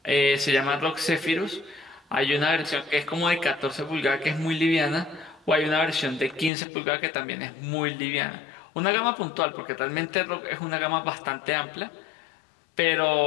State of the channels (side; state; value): right; drops out; at 6.5 s